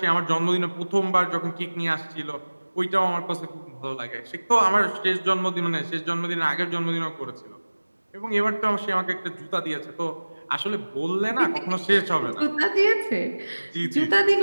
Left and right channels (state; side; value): inverted; both; correlation -1.00